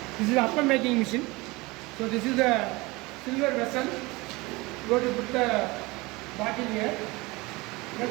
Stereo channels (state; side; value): quieter; left; 23.1 dB